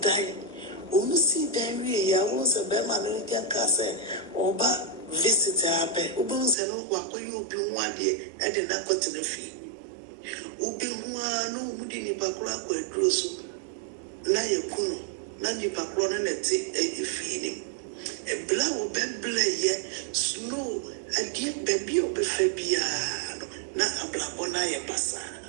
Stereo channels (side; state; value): left; drops out; at 6.6 s